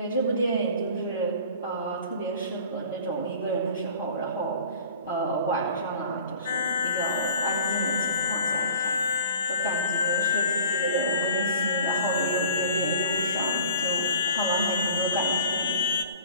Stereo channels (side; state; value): both; inverted; correlation -0.46